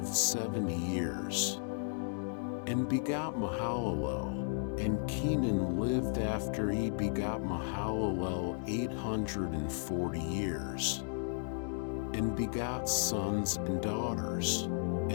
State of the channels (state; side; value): silent; right; 55 dB below the other